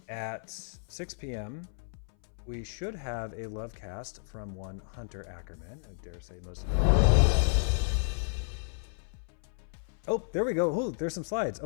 at 6 p.m., we should have a love cast from one Hunter Ackerman. I dare say most of them. Oh, there we go. Oh, there's some slides.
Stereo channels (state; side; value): silent; right; 57 dB below the other